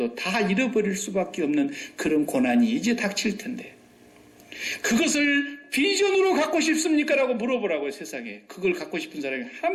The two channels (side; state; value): both; identical; correlation 1.00